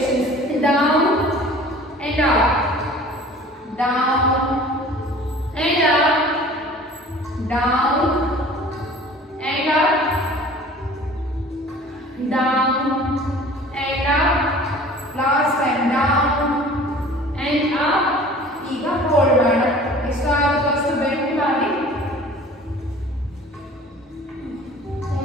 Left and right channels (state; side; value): normal; both; correlation 0.46